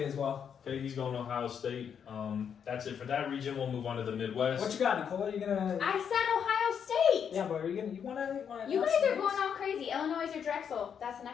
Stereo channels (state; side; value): quieter; right; 7.6 dB